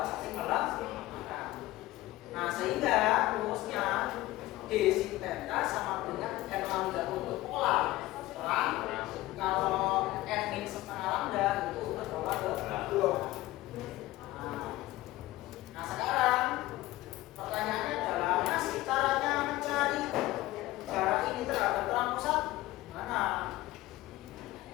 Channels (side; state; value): right; quieter; 17.6 dB